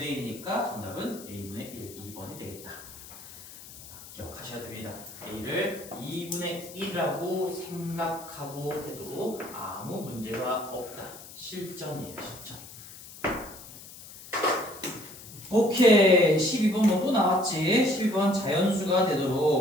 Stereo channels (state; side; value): noise; left; hiss, 16 dB below the sound